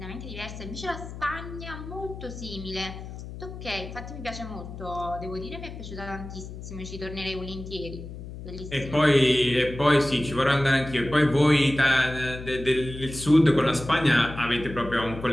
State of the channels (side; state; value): left; noise; hum, 11 dB below the sound